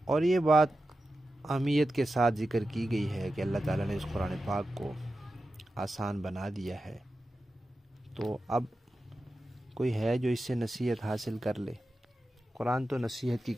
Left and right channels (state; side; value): normal; both; correlation 0.92